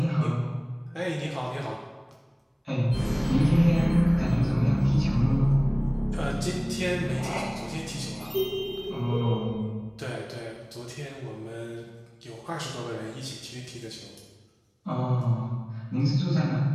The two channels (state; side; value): identical; both; correlation 1.00